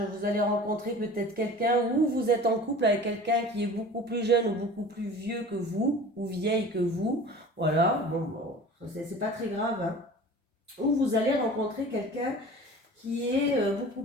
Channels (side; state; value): both; normal; correlation 0.41